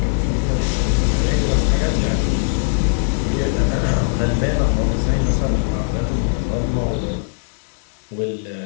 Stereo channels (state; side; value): silent; right; digital silence